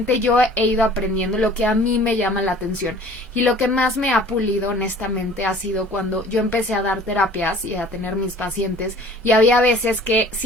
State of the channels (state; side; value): normal; both; correlation 0.49